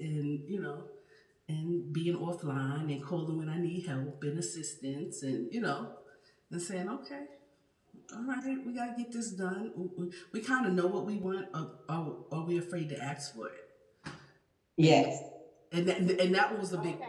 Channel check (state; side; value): identical; both; correlation 1.00